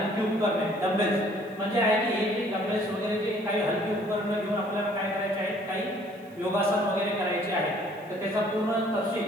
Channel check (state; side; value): noise; right; hiss, 30 dB below the sound